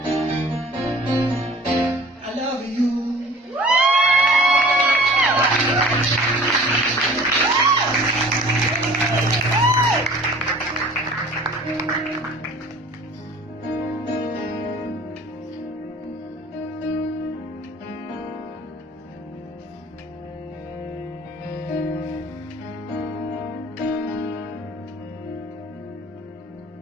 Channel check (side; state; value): both; normal; correlation 0.47